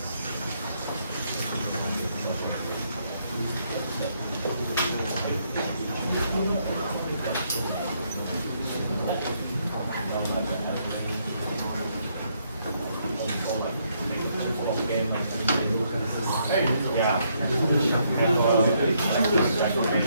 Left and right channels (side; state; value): both; inverted; correlation -0.73